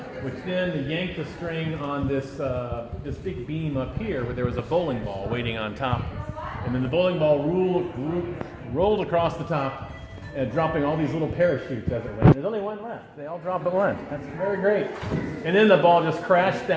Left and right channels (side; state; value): both; identical; correlation 1.00